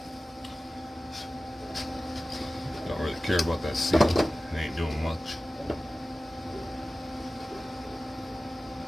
Don't really care about that seal. It ain't doing much.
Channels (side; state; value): both; normal; correlation 0.96